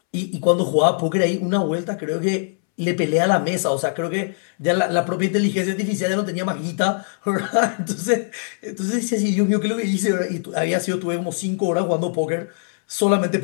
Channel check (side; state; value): right; silent; 65 dB below the other